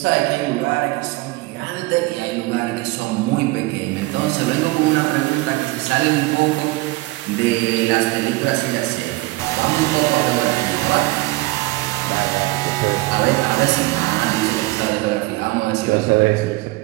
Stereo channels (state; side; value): quieter; left; 21.0 dB